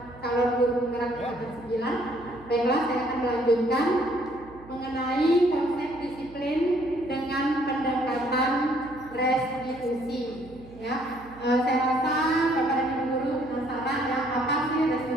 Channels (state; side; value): noise; right; hum, 20 dB below the sound